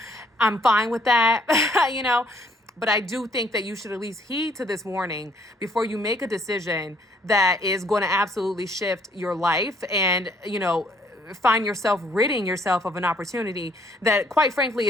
I'm fine with that, But I do think that you should at least heed to this warning before you make a decision that is going to absolutely shift your life and, find yourself ridding yourself of an opportunity that, quite frankly,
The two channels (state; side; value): normal; both; correlation 0.64